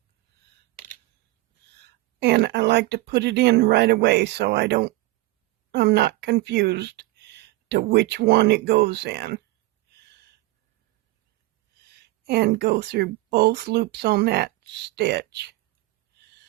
and I like to put it in right away so I'm not confused to which one it goes in. And go through both loops on that stitch.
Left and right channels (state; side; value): quieter; left; 19.4 dB